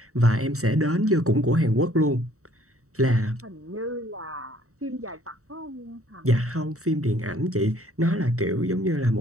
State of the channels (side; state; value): left; late; 0.64 ms